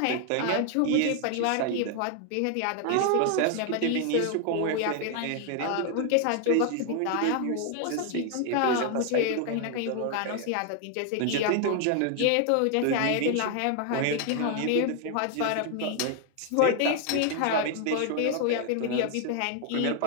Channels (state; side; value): different; both; correlation 0.00